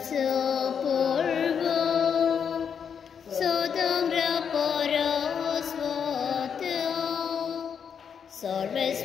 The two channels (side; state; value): right; quieter; 7.2 dB